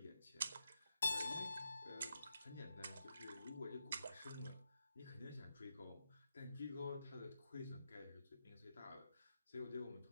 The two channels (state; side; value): inverted; both; correlation -0.86